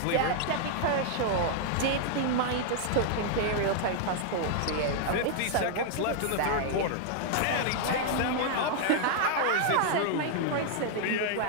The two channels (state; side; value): different; both; correlation -0.01